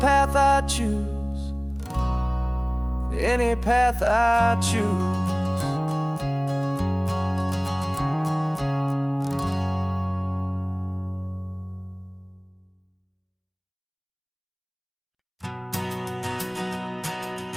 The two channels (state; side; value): identical; both; correlation 1.00